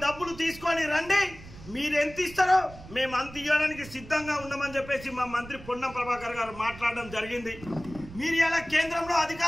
డబ్బులు తీసుకొని రండి. మీరు ఎంత ఇస్తారో మేము అంత ఇవ్వడానికి సిద్ధంగా ఉన్నామని చెప్పేసి మా మంత్రి పొన్నం ప్రభాకర్ గారు మాట్లాడడం జరిగింది. మీరు ఇలా కేంద్రంలో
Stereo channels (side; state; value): right; noise; rumble, 16 dB below the sound